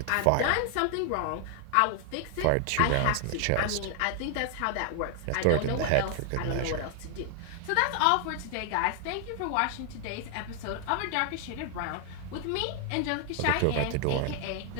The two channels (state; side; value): different; both; correlation 0.00